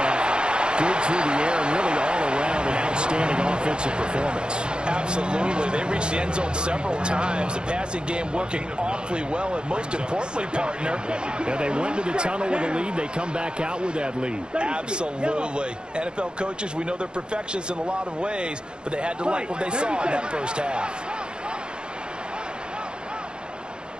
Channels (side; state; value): left; late; 0.050 ms